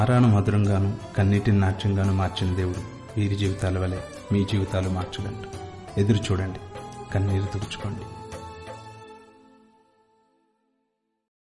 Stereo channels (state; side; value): identical; both; correlation 1.00